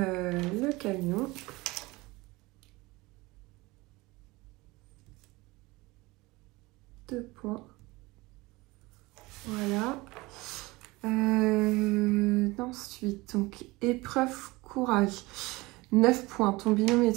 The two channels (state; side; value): quieter; left; 22.1 dB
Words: camion. Deux points. Voilà. Ensuite, donc, épreuve courage. 9 points. Ton binôme et